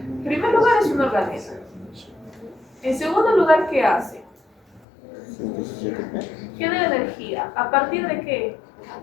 primer lugar es un organismo. En segundo lugar, ¿qué hace? Genera energía. ¿A partir de qué?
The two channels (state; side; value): drops out; right; at 4.9 s